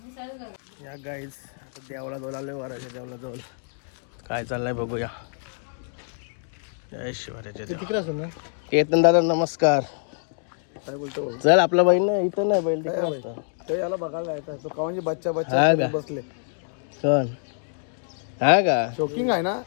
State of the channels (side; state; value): right; silent; digital silence